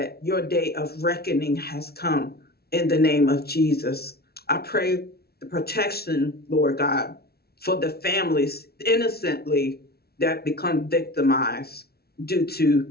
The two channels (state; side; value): late; right; 0.45 ms